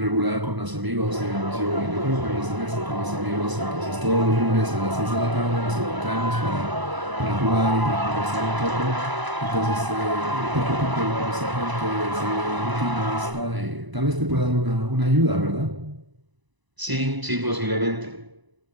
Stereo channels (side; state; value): left; late; 1.0 ms